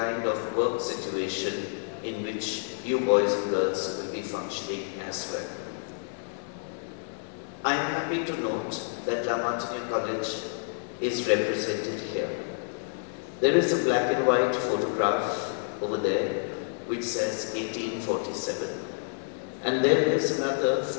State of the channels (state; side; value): silent; right; digital silence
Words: of work situation in which you boys and girls will be functioning as well. I am happy to note that Martiniere College is represented here. There is a black and white photograph over there which says 1847. And there is another